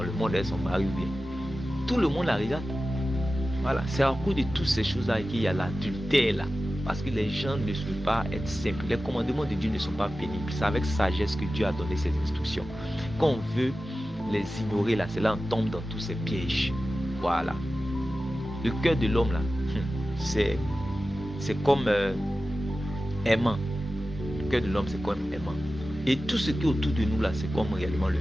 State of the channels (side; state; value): both; normal; correlation 0.94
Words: le monde avec son mari ou bien. Tout le monde la regarde. Voilà, c'est à cause de toutes ces choses là qu'il y a l'adultère là. Parce que les gens ne veulent pas être simples. Les commandements de Dieu ne sont pas pénibles. C'est avec sagesse que Dieu a donné ses instructions. Quand on veut les ignorer là, c'est là on tombe dans tous ces pièges. Voilà. Le cœur de l'homme là, c'est comme aimant. Le cœur de l'homme, c'est comme aimant. Et tout ce qui est autour de nous là, c'est comme réellement le